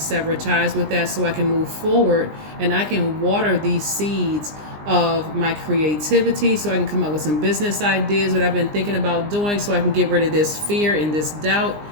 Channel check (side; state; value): left; late; 20 ms